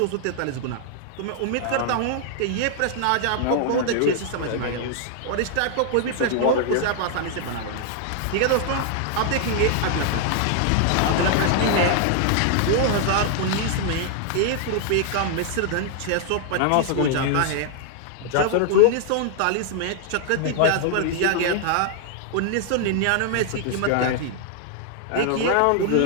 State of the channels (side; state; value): both; different; correlation 0.00